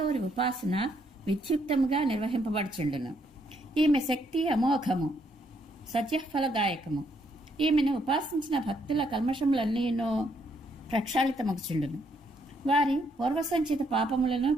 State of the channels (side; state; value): both; normal; correlation 0.72